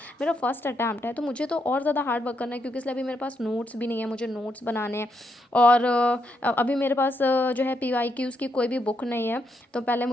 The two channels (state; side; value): normal; both; correlation 0.79